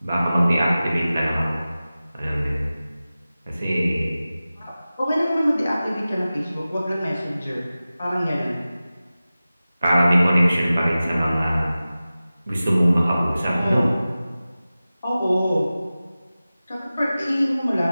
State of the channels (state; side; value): inverted; both; correlation -0.96